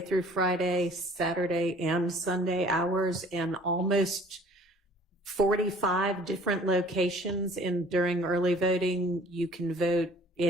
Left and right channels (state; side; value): normal; both; correlation 0.51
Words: Friday, Saturday and Sunday hours, and almost 45 different locations during early voting. You can vote